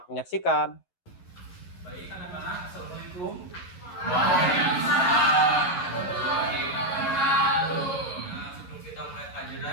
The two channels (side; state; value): right; late; 11 ms